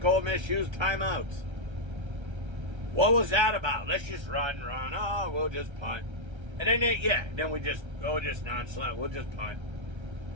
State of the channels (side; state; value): left; late; 1.3 ms